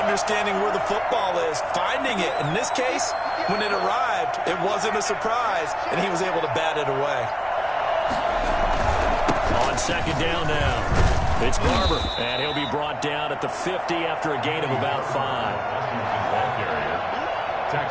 understanding where the football is, finding it. In this case, when it arrived, it wasn't a surprise, and he was able to bat it away. On second down now. It's Barber, and he'll be brought down at the 50 after a gain of about 5. Washington ball carrier.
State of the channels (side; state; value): both; identical; correlation 1.00